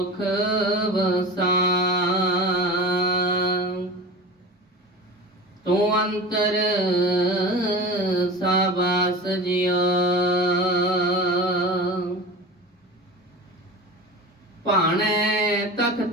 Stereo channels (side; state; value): both; normal; correlation 0.32